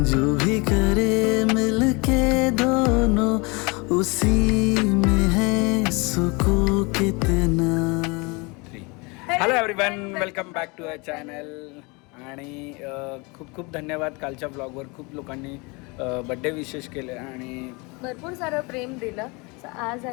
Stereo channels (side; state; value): right; quieter; 28.0 dB